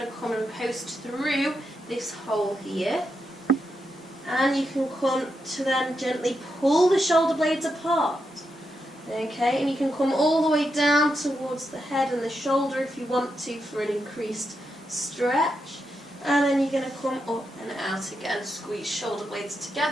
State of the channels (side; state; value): both; normal; correlation 0.84